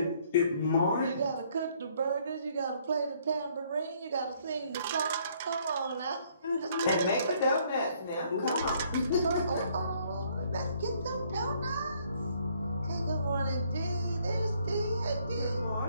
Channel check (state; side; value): inverted; both; correlation -0.65